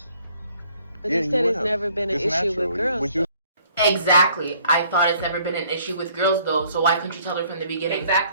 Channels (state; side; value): inverted; both; correlation -0.61